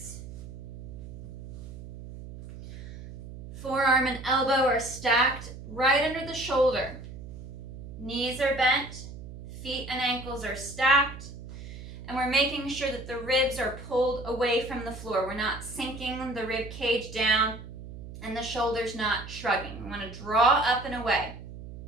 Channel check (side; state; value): right; noise; hum, 12 dB below the sound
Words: Forearm and elbow are stacked right under the shoulder. Knees are bent, feet and ankles are stacked, and we're making sure that the ribs are pulled away from the floor. We're not sinking the rib cage down and the shoulders not shrugging. We want to draw up and away.